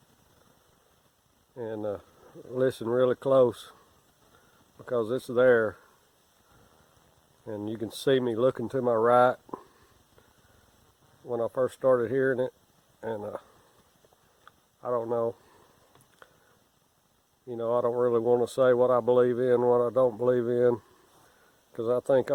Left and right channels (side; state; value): both; identical; correlation 1.00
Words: and listen really close, because it's there, and you can see me looking to my right when I first started hearing it, and I don't know. I don't really want to say what I believe in, what I don't believe in, because I think